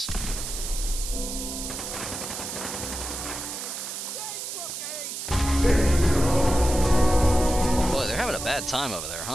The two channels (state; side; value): noise; right; hiss, 6 dB below the sound